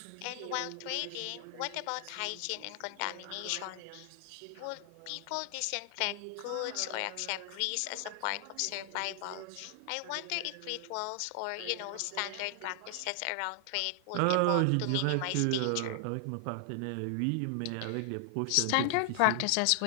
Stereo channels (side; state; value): both; different; correlation 0.00